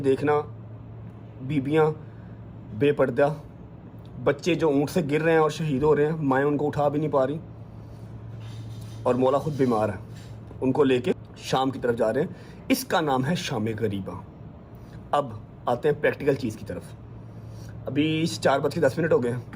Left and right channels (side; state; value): both; identical; correlation 1.00